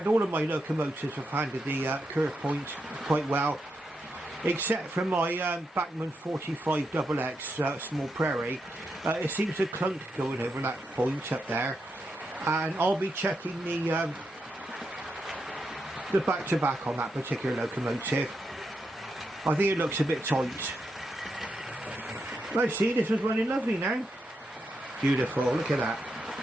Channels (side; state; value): both; normal; correlation 0.84